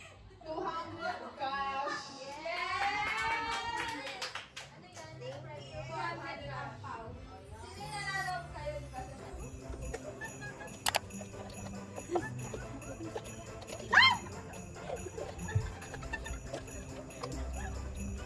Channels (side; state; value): both; identical; correlation 1.00